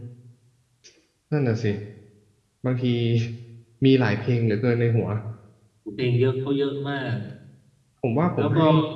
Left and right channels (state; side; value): identical; both; correlation 1.00